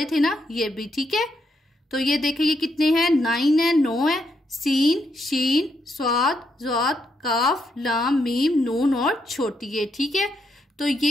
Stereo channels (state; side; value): normal; both; correlation 0.78